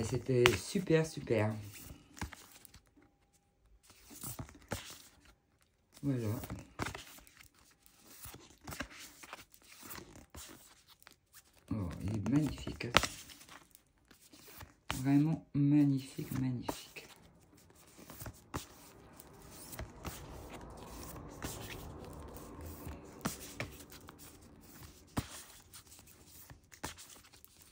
c'était super, super. Voilà. Oh, il est magnifique. Vraiment magnifique, magnifique.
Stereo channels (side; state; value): both; identical; correlation 1.00